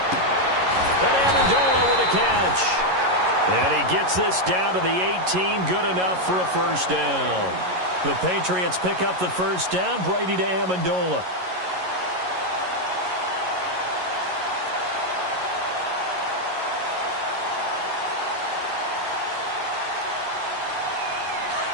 And Amendola with a catch. And he gets this down to the 18. Good enough for a first down. The Patriots pick up the first down. Brady to Amendola.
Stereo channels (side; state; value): left; late; 11 ms